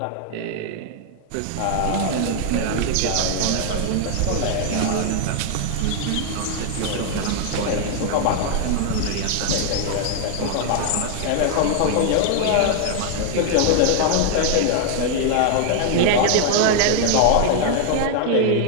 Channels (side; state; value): both; different; correlation 0.00